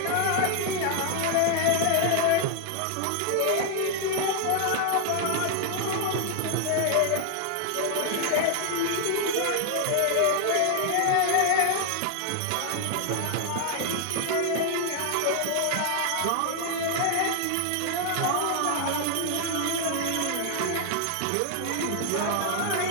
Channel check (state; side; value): different; both; correlation 0.00